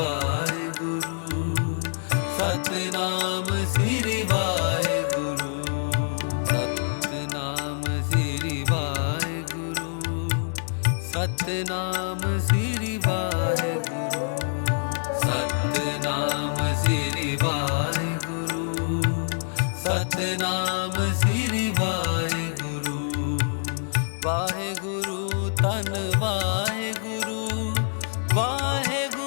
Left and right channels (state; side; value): silent; right; digital silence